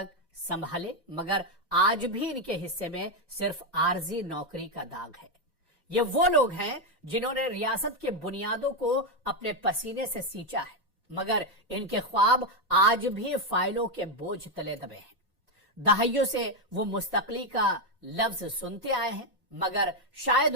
संभाले, मगर आज भी इनके हिस्से में सिर्फ आरजी नौकरी का दाग है। ये वो लोग हैं जिन्होंने रियासत के बुनियादों को अपने पसीने से सींचा है, मगर इनके ख्वाब आज भी फाइलों के बोझ तले दबे हैं। दहाइयों से वो मुस्तकली का लफ्ज सुनते आए हैं, मगर शायद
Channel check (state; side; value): normal; both; correlation 0.04